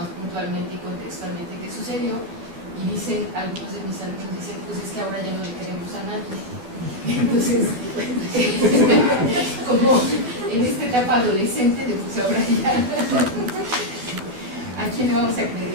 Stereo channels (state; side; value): late; left; 12 ms